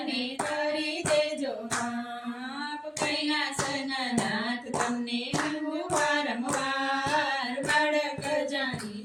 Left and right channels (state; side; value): identical; both; correlation 1.00